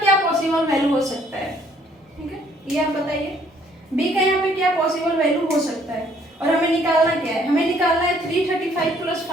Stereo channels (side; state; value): both; normal; correlation 0.63